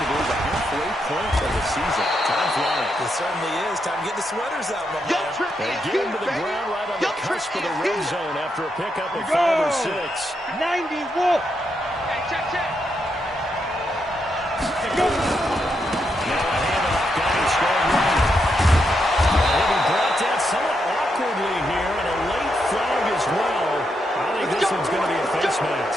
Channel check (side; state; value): both; normal; correlation 0.81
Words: believe, the halfway point of the season. Time flying. It certainly is. Time to get the sweaters out, my man. They get him to the ground right on the cusp of the red zone after a pickup of 5 or 6. 90 Wolf. Hey, check. Go. Now a handoff. Got him strong right. He'll be brought down somewhat awkwardly here, and a late flag as well. I think this one's going to be a face